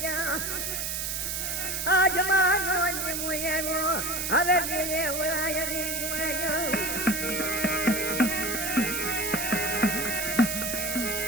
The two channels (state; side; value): noise; right; hiss, 2 dB below the sound